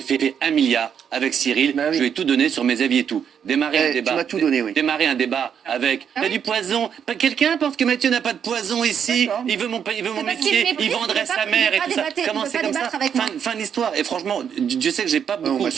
1 milliard avec Cyril. Bah oui. Je lui ai tout donné sur mes avis et tout. démarrer un Tu débat. m'as tout donné, oui. Démarrer un débat avec Ah il y a oui. du poison. Quelqu'un pense que Mathieu n'a pas de poison ici. D'accord. Il veut mon parce qu'il métier. méprise, Il vendrait il veut sa pas- mère il et veut tout pas ça. débattre- Comment il veut c'est pas comme ça débattre avec moi. Fin de l'histoire. Et franchement, Dieu sait que j'ai pas beaucoup Mathieu.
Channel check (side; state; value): left; quieter; 8.0 dB